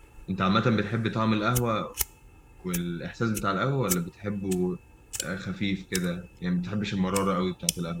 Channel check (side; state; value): both; identical; correlation 1.00